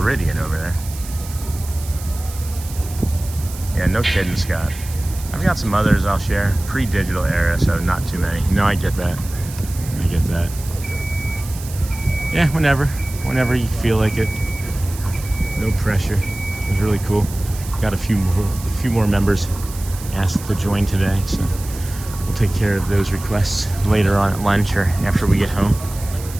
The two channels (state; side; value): noise; right; hiss, 15 dB below the sound